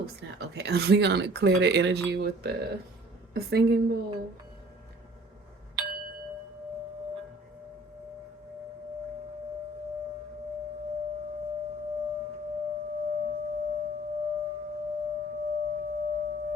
snap. Okay, we gonna clear the energy with the singing bowl.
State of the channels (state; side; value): normal; both; correlation 0.52